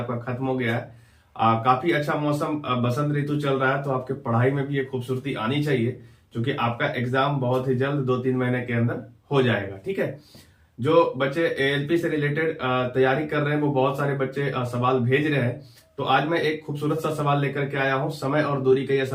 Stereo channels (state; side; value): identical; both; correlation 1.00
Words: खत्म हो गया है। काफी अच्छा मौसम, बसंत ऋतु चल रहा है, तो आपके पढ़ाई में भी एक खूबसूरती आनी चाहिए, क्योंकि आपका एग्जाम बहुत ही जल्द 2-3 महीने के अंदर हो जाएगा। ठीक है। जो बच्चे एएलपी से रिलेटेड तैयारी कर रहे हैं वो बहुत सारे बच्चे सवाल भेज रहे हैं, तो आज मैं एक खूबसूरत सा सवाल लेकर के आया हूं। समय और दूरी का यह